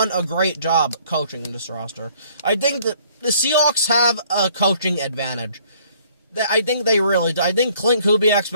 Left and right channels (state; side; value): inverted; both; correlation -0.60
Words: a great job coaching this roster. I think that the Seahawks have a coaching advantage. I think they really do. I think Clint Kubiak's